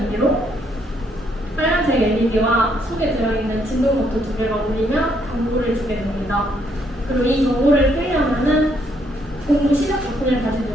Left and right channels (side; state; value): both; normal; correlation 0.71